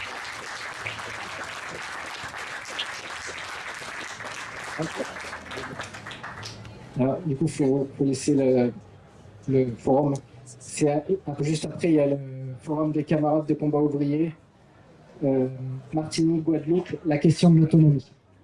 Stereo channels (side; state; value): both; identical; correlation 1.00